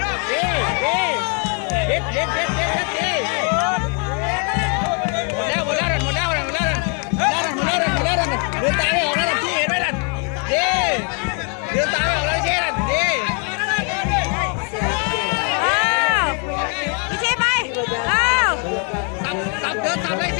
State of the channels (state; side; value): quieter; right; 39.0 dB